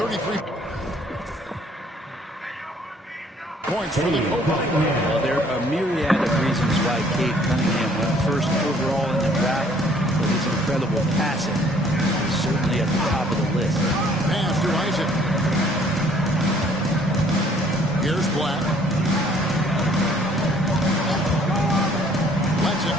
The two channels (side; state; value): both; normal; correlation 0.59